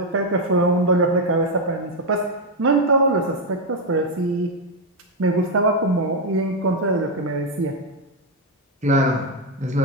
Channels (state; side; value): normal; both; correlation 0.03